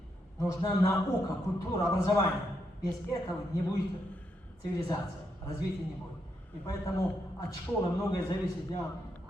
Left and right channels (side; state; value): both; normal; correlation 0.80